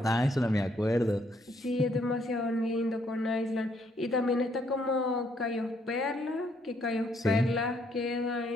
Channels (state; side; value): normal; both; correlation 0.70